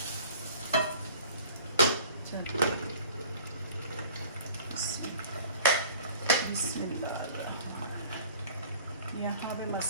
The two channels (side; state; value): both; inverted; correlation -0.48